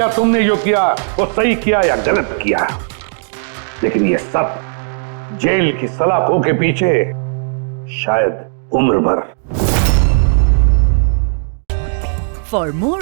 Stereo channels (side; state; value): left; silent; digital silence